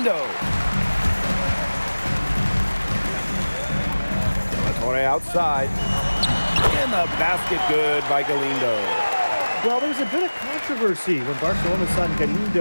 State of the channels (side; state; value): both; inverted; correlation -1.00